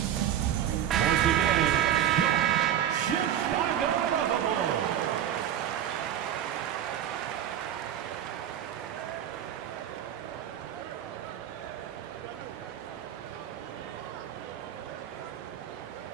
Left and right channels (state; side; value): quieter; left; 10.6 dB